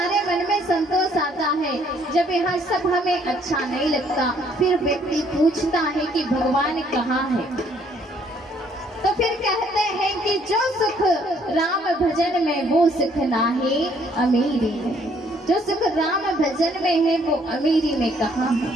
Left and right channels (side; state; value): both; normal; correlation 0.65